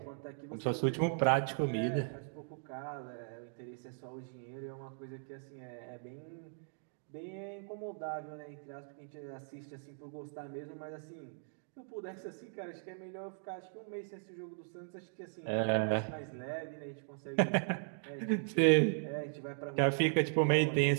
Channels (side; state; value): left; silent; digital silence